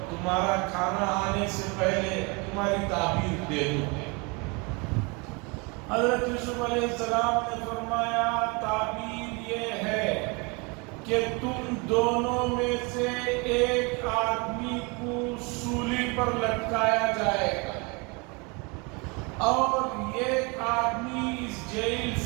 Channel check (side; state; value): left; quieter; 29.7 dB